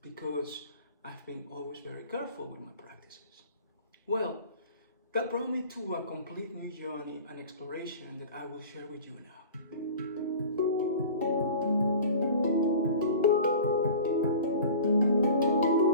because I've been always very careful with my practices. Well, that brought me to a complete new journey and exploration that I will share with you now.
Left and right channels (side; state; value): both; inverted; correlation -0.40